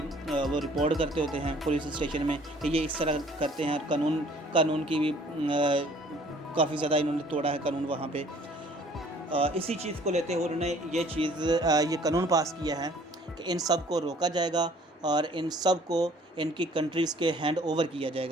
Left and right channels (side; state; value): both; normal; correlation 0.56